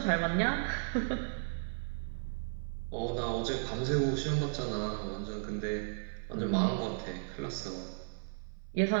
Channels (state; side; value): silent; left; 55 dB below the other